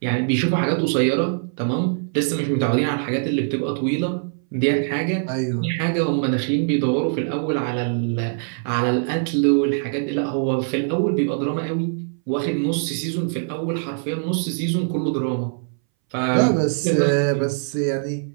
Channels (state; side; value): silent; left; 61 dB below the other